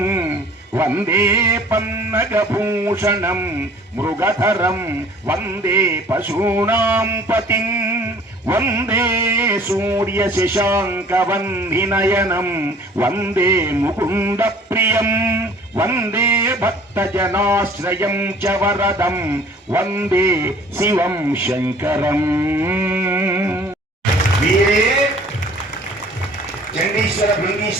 వందే పన్నగభూషణం మృగధరం, వందే పశూనాం పతిం, వందే సూర్య శశాంక వందినయనం, వందే ముకుంద ప్రియం, వందే భక్తజనాశ్రయం చ వరదం, వందే శివం శంకరం. వీరే చండీశ్వర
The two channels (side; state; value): both; normal; correlation 0.51